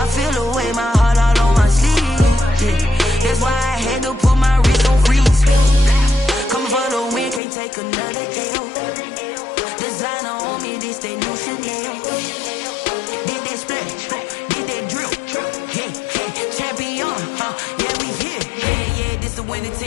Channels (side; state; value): right; drops out; at 7.4 s